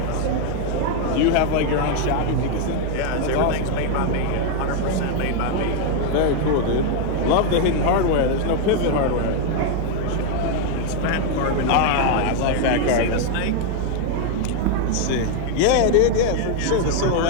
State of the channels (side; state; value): both; different; correlation 0.00